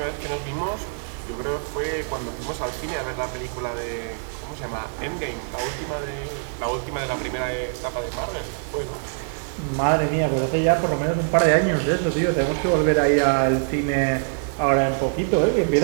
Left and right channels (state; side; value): silent; left; 63 dB below the other